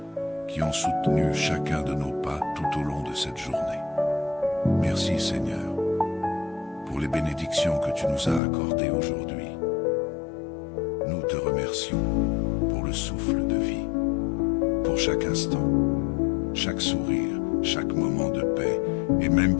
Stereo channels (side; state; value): right; drops out; at 8.4 s